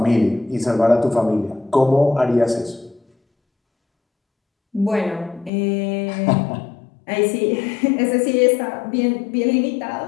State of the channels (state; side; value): drops out; right; at 5.5 s